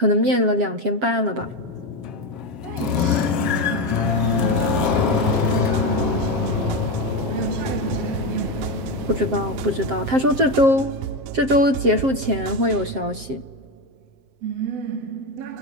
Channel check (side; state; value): left; late; 7.5 ms